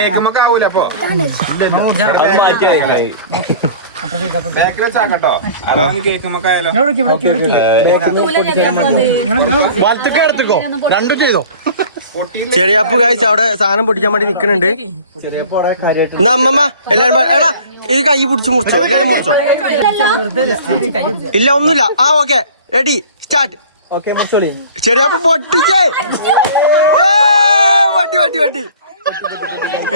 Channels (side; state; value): both; inverted; correlation -0.44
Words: ആവൂല അപ്പൊ കേക്കുമ്പോ ആയാലോ. ചെറിയാപ്പ് കാഴ്ച അവിടെ സാധനം പൊട്ടിക്കാൻ വേണ്ടി നിക്കണുണ്ട്. എന്നാ അമ്മമ്മ എല്ലാരും എടാ ഇത് കൈ പിടിച്ച് മുറിച്ചോ. എല്ലാരും മുറിച്ചോ? ഇല്ല ഒന്നുമില്ല. Okay ready start. ചെറിയാപ്പ് പൊട്ടിച്ചേ. വട്ടി